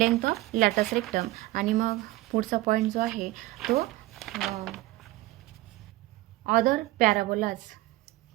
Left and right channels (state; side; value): quieter; left; 17.9 dB